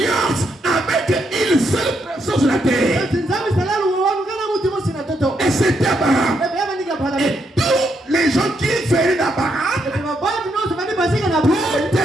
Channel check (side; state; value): both; normal; correlation 0.78